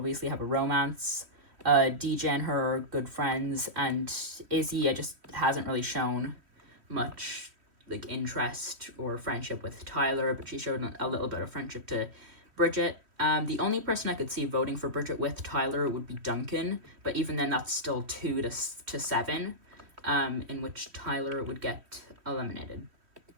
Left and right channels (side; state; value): left; late; 3.1 ms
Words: have a romance. DJ and her are good friends, and Izzy just hasn't really shown much like interest or friendship with Tyler, but she showed a little bit of friendship to Bridget. The only person I could see voting for Bridget with Tyler would be Duncan, but even then that's still 2 to 7. In which Tyler would get eliminated.